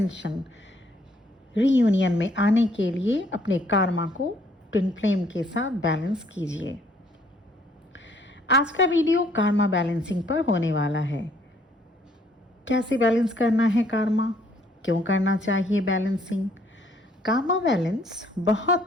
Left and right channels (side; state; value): both; normal; correlation 0.65